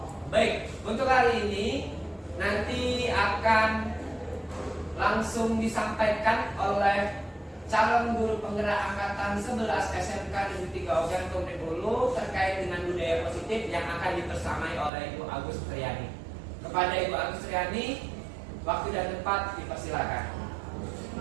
Baik, untuk hari ini nanti akan langsung disampaikan oleh calon guru penggerak angkatan 11 SMK Negeri 3 Ogan Komplek Hulu terkait dengan budaya positif yang akan dibersamai oleh Ibu Agus Triani. Kepada Ibu Agus Triani, waktu dan tempat dipersilakan.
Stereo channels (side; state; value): left; drops out; at 14.9 s